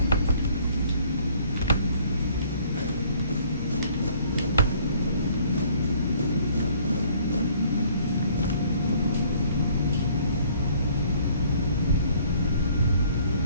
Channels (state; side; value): inverted; both; correlation -0.59